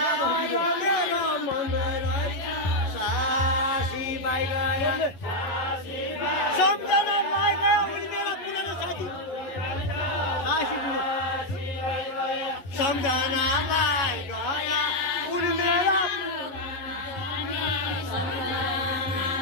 मेरो मङ्गल रहेछ साजी भाइ गयो सम्झना भाइ गयो उनी मेरो पुरानो साथी सासी बुढो सम्झना भाइ गयो उनी मेरो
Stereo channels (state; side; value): late; right; 11 ms